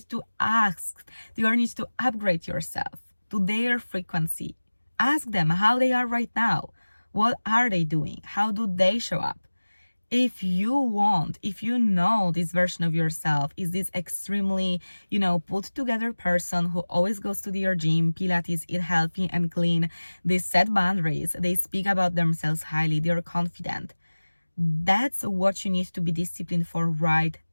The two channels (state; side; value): inverted; both; correlation -1.00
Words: to ask, you need to upgrade yourself. to their frequency. Ask them how they are right now. What are they doing? How do they show up? If you know this version of yourself is this extremely, put together person who always goes to their gym, Pilates, eat healthy and clean, they set boundaries, they speak about themselves highly, they're confident. That's what you need to be disciplined for right